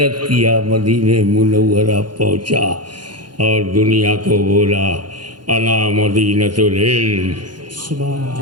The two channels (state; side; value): late; left; 0.71 ms